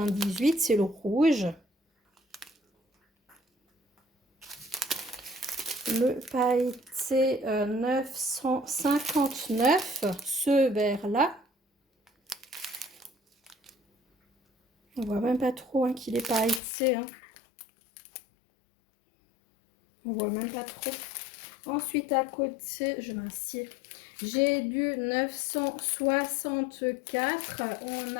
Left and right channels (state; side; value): drops out; right; at 16.6 s